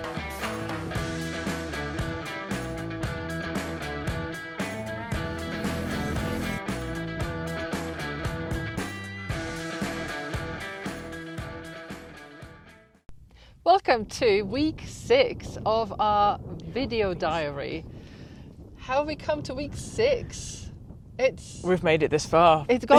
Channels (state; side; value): identical; both; correlation 1.00